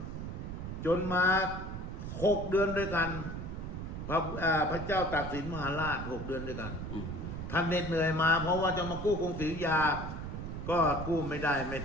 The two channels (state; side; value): noise; right; rumble, 6 dB below the sound